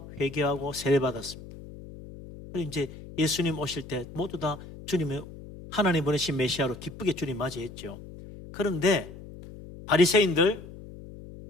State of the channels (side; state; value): left; noise; hum, 15 dB below the sound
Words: 회개하고 세례받았습니다. 그리고 이제 예수님 오실 때 모두 다 주님의 하나님 보내신 메시아로 기쁘게 주님 맞이했죠. 그런데 바리새인들,